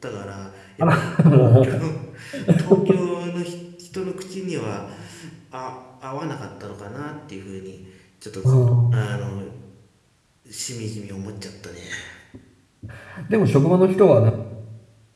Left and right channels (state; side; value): identical; both; correlation 1.00